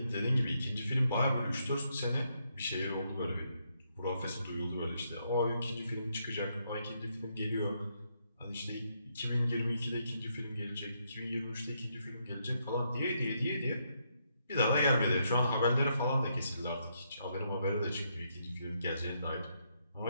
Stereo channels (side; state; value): both; inverted; correlation -0.77